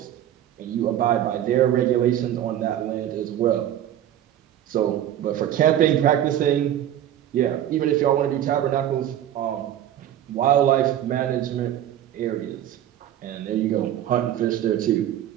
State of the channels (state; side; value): quieter; left; 11.5 dB